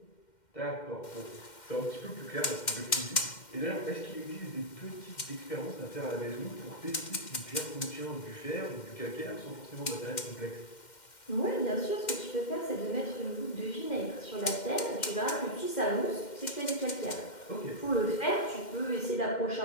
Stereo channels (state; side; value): late; right; 2.1 ms